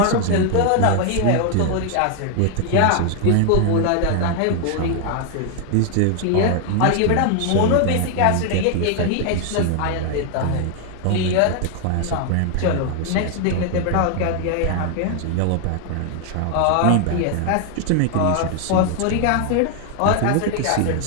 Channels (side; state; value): both; different; correlation 0.00